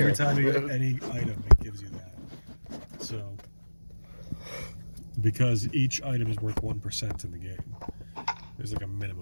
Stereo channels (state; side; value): inverted; both; correlation -1.00